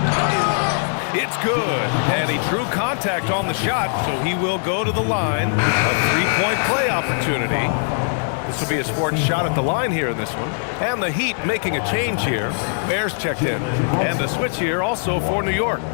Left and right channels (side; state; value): right; silent; digital silence